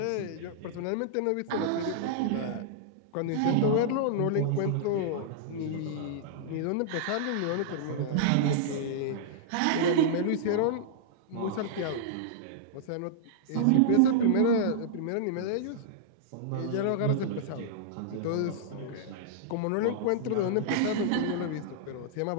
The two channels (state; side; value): different; both; correlation -0.02